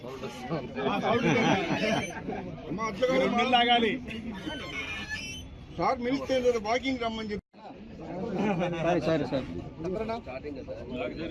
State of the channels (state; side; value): identical; both; correlation 1.00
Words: సార్ మినిస్టర్ వాకింగ్ రమ్మని చెప్పి సరే